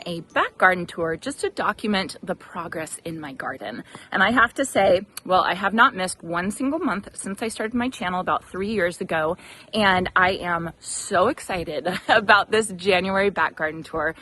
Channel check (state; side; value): identical; both; correlation 1.00